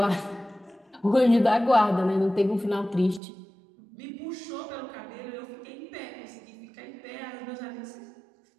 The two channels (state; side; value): drops out; left; at 3.2 s